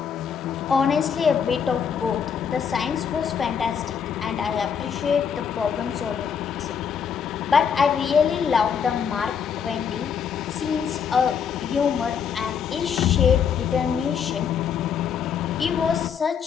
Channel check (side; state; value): right; quieter; 7.2 dB